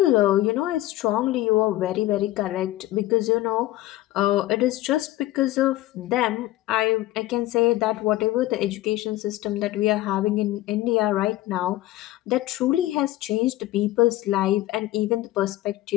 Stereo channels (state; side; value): quieter; right; 16.0 dB